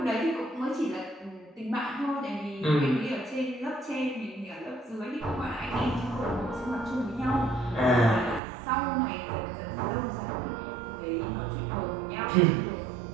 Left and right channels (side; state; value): left; drops out; at 8.4 s